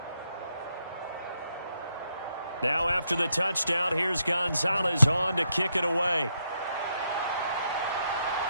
Now after the touchdown, here's Gonzalez on to kick it away.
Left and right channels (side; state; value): both; inverted; correlation -0.79